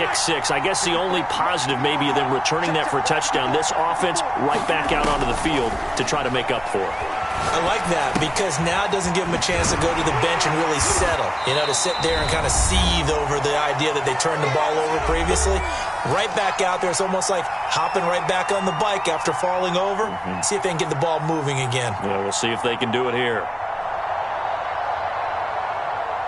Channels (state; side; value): identical; both; correlation 1.00